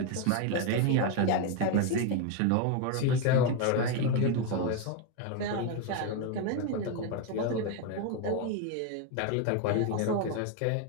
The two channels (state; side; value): different; both; correlation 0.02